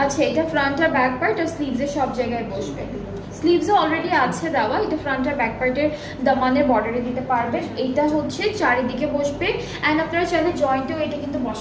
আচ্ছা এটা ফ্রন্ট আর ব্যাক পার্ট আর স্লিভসে সব জায়গায় বসবে। স্লিভসও অলরেডি আছে দেওয়া, এটা ফ্রন্ট আর ব্যাক পার্টের দামানের বর্ডারে দিতে পারবেন। এইটা হচ্ছে চারিদিকে বসবে অ্যান্ড আপনারা চাইলে জয়েন্টেও এটা কিন্তু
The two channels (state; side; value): identical; both; correlation 1.00